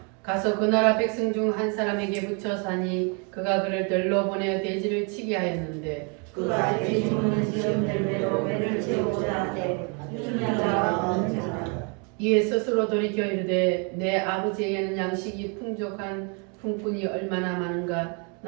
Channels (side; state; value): left; quieter; 35.7 dB